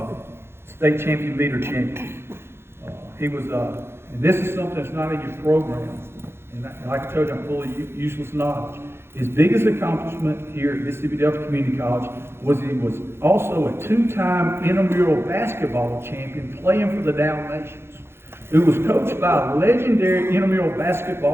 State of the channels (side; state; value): left; late; 0.12 ms